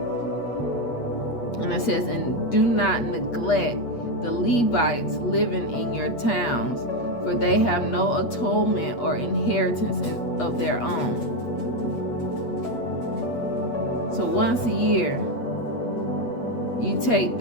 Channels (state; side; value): late; right; 8.4 ms